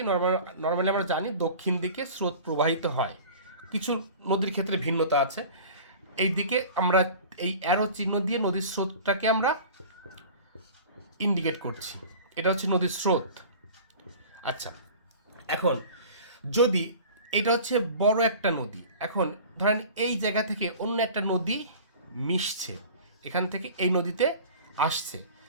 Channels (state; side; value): inverted; both; correlation -0.41